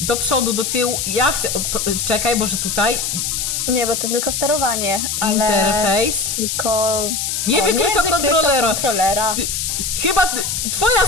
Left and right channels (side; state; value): left; noise; hiss, 1 dB below the sound